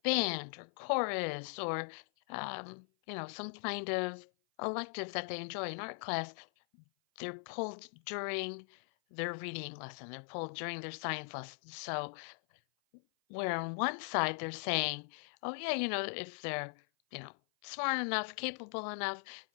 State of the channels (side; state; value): right; silent; 52 dB below the other